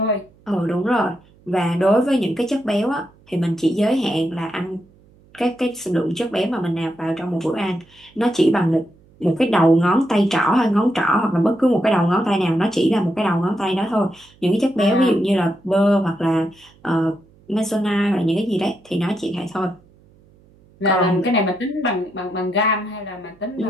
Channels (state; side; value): noise; right; hum, 29 dB below the sound